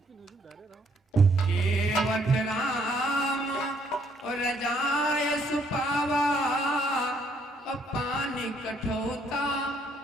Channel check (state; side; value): normal; both; correlation 0.68